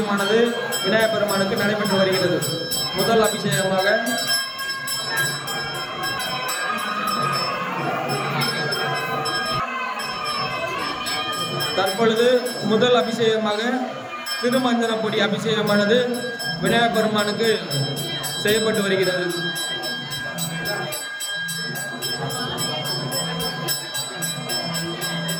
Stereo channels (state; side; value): identical; both; correlation 1.00